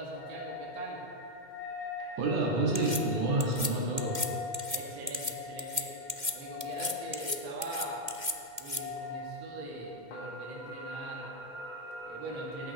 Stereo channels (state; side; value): late; left; 2.1 ms